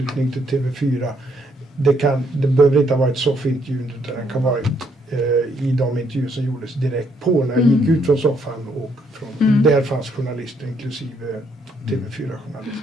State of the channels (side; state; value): both; normal; correlation 0.72